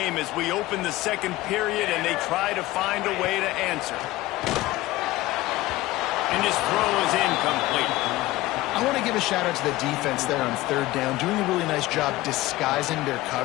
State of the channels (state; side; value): quieter; right; 17.8 dB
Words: as we open the second period and they try to find a way to answer. And his throw is incomplete. I want to give a shout out to the defense there on third down, doing a really nice job disguising their